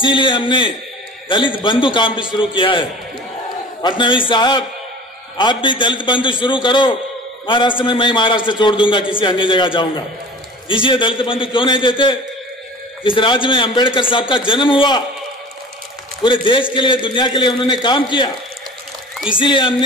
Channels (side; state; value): both; normal; correlation 0.41